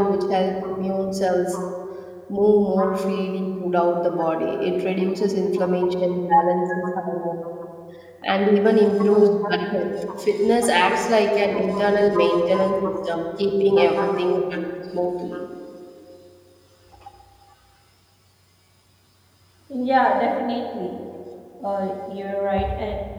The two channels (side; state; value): both; identical; correlation 1.00